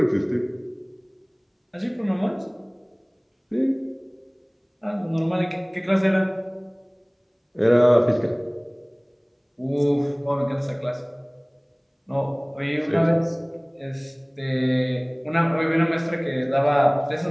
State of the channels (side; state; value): both; identical; correlation 1.00